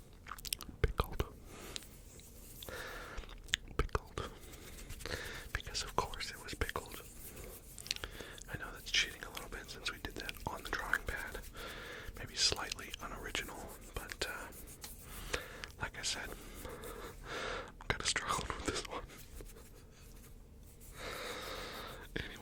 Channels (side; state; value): both; identical; correlation 1.00